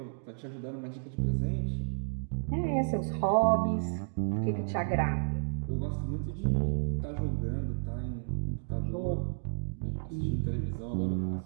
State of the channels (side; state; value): left; silent; digital silence